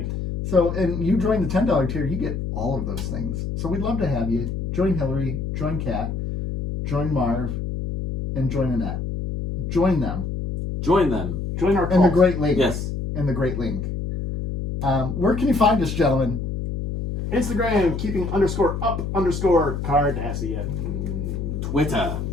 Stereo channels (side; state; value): left; noise; hum, 4 dB below the sound